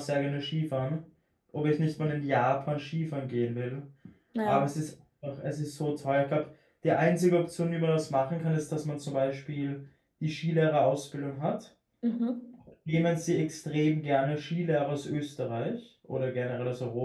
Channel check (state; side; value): identical; both; correlation 1.00